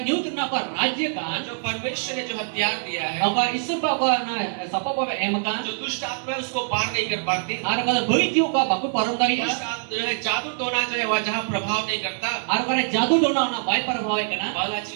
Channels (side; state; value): left; silent; 61 dB below the other